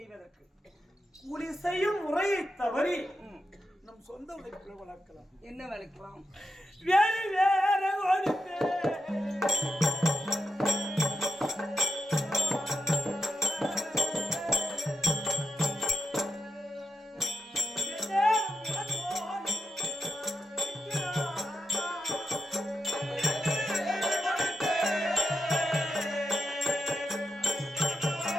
கூலி செய்யும் முறையை தவறி நம் சொந்த உழைப்புகளை வளர்க்கலாம். என்ன வளர்க்கலாம்? வேறு வேற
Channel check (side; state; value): both; normal; correlation 0.88